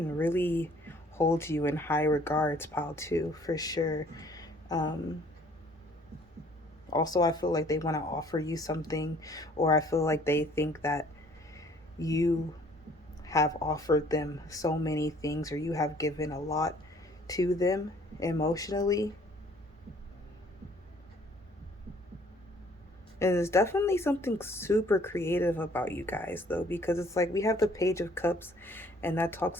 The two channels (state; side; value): normal; both; correlation 0.57